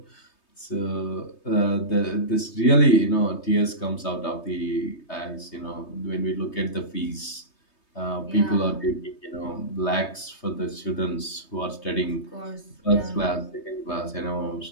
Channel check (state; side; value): late; right; 3.2 ms